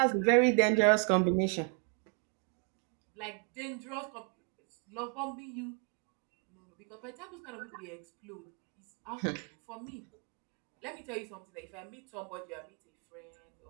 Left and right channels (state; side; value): quieter; left; 39.7 dB